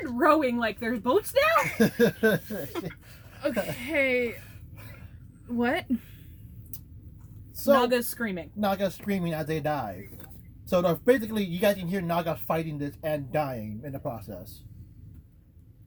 rowing like there's boats now? Okay. What? so Naga's screaming. Nagas screaming as they die. So basically, you guys can hear Nagas fighting this and dying in the process.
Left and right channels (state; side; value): identical; both; correlation 1.00